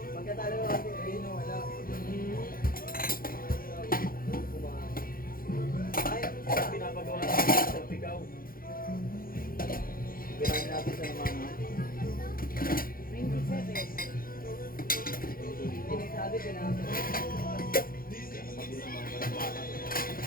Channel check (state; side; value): late; right; 0.42 ms